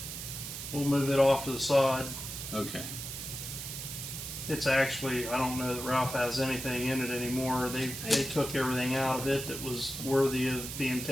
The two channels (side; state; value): right; noise; hiss, 7 dB below the sound